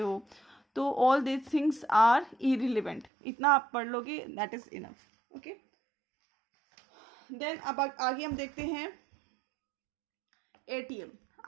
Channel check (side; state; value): left; drops out; at 3.1 s